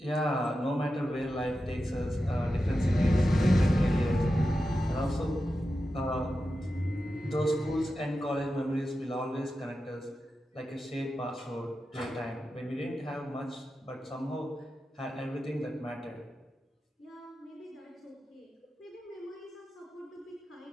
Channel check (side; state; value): both; normal; correlation 0.91